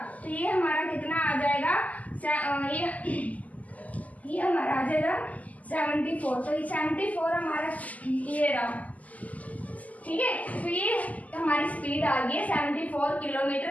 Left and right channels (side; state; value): right; late; 0.075 ms